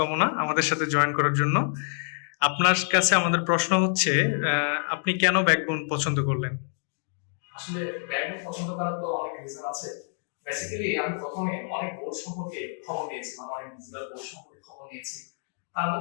আমাদের সাথে জয়েন করার জন্য। আপনার কাছে আমাদের প্রশ্ন হচ্ছে, আপনি কেন ব্যাকবোন পছন্দ করলেন? আসলে ব্যাকবোন পছন্দ করার তো অনেক রিজন আছে। বেসিক্যালি আমি প্রথমে অনেক বোর্ড সম্পর্কে খবর নিয়েছি, মানে অনেক ডিজিটাল বোর্ড সম্পর্কে খবর নিয়েছি। তার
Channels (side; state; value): right; silent; 60 dB below the other